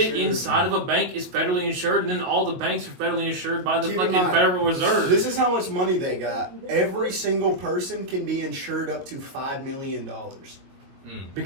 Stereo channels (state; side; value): late; left; 22 ms